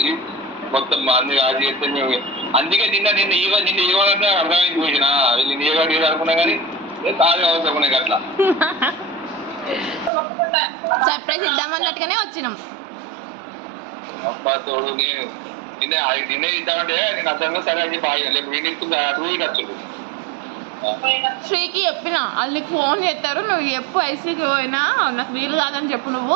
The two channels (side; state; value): left; drops out; at 10.1 s